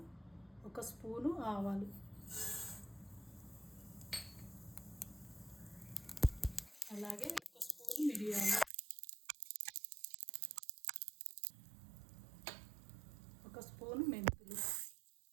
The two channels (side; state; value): left; drops out; at 8.7 s